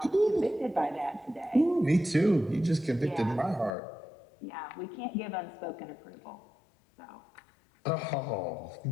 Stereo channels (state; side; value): drops out; right; at 3.7 s